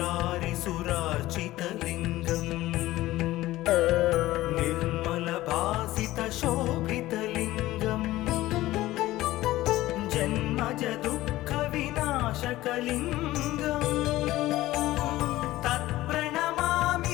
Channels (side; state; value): right; quieter; 16.6 dB